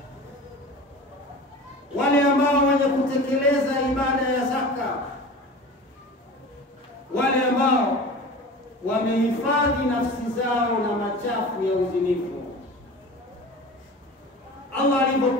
Wale ambao wenye kutekeleza ibada ya zaka, wale ambao wamehifadhi nafsi zao na machafu ya uzinifu. Allah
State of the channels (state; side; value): normal; both; correlation 0.36